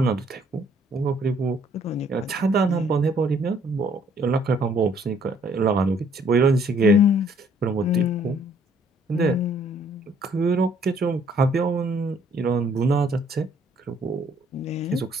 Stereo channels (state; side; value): normal; both; correlation 0.63